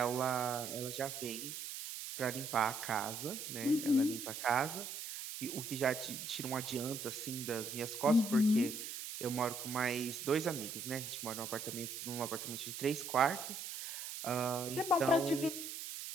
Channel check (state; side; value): noise; right; hiss, 7 dB below the sound